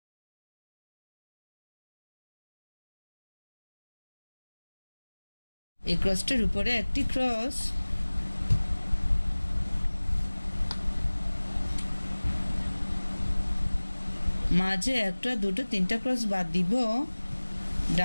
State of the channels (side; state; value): both; inverted; correlation -1.00